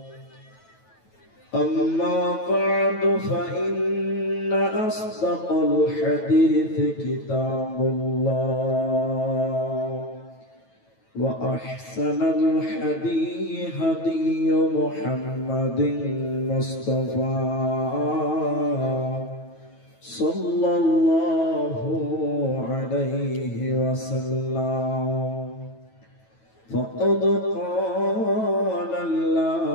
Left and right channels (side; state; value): right; late; 9.1 ms